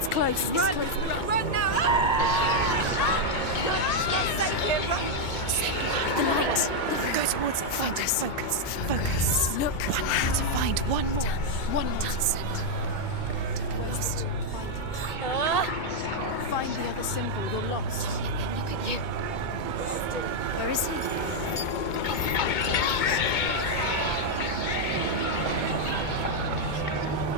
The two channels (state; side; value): late; right; 2.2 ms